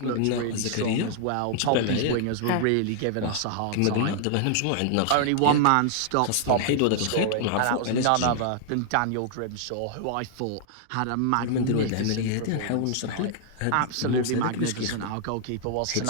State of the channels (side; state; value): both; different; correlation -0.01